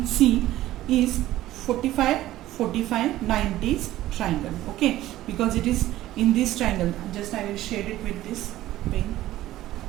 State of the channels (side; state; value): left; quieter; 15.0 dB